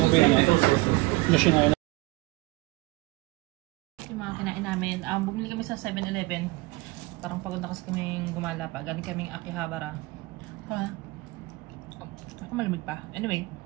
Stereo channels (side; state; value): left; quieter; 22.9 dB